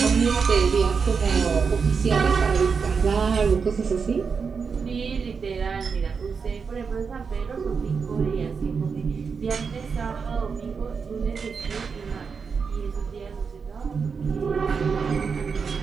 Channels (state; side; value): quieter; left; 5.6 dB